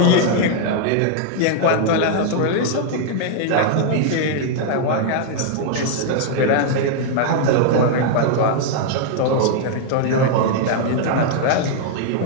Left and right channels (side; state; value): both; different; correlation 0.00